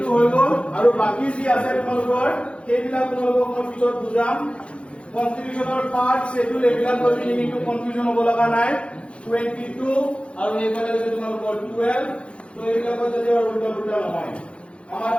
হৈ গ'ল আৰু বাকী যি আছে তোমালোকৰ সেইবিলাক তোমালোকক মই পিছত বুজাম কনষ্টিটিউচনৰ পাৰ্ট শেডিউল এইবিলাক লৈ পিনি কিন্তু কনফিউজন হ'ব লগা নাই 22 আৰু এইফালে হৈছে তোমালোকৰ 12 তো এইবিলাকৰ যদি উল্টা পুল্টা নহয় আমাৰ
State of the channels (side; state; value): right; late; 0.060 ms